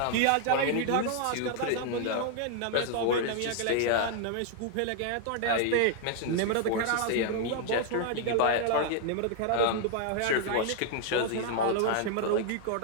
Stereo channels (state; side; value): different; both; correlation 0.00